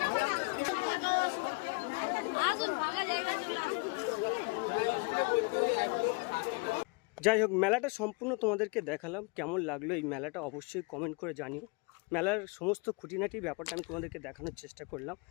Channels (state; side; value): quieter; right; 30.2 dB